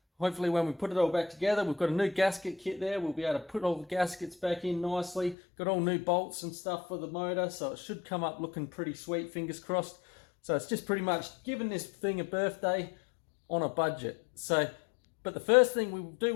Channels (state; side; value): drops out; right; at 5.4 s